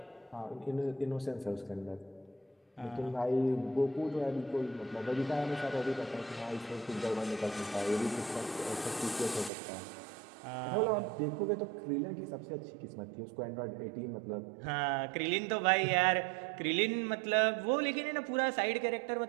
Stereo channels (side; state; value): left; drops out; at 9.5 s